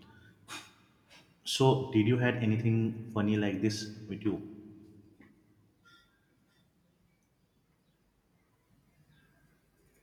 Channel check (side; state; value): both; identical; correlation 1.00